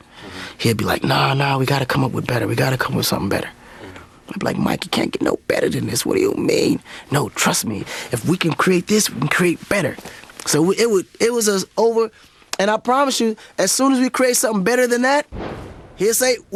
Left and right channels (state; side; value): identical; both; correlation 1.00